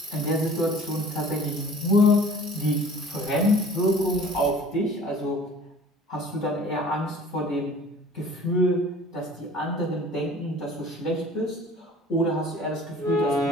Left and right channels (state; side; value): normal; both; correlation 0.47